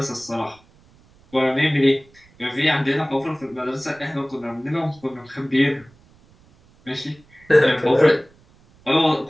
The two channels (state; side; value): noise; right; rumble, 29 dB below the sound